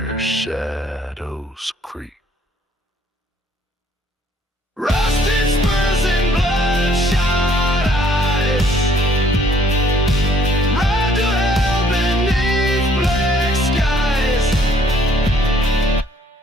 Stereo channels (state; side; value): normal; both; correlation 0.62